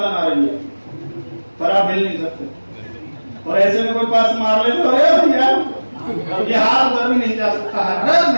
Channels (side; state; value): both; inverted; correlation -1.00